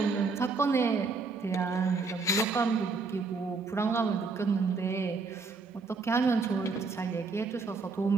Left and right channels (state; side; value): quieter; left; 4.3 dB